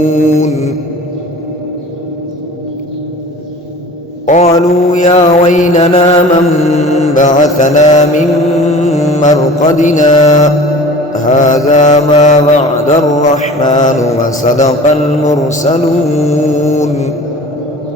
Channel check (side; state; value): both; normal; correlation 0.42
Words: قالوا يا ويلنا من بعثنا من مرقدنا هذا ما وعد الرحمن وصدق المرسلون